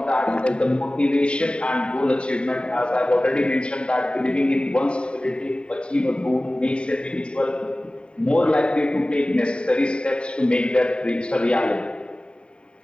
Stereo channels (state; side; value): late; right; 0.053 ms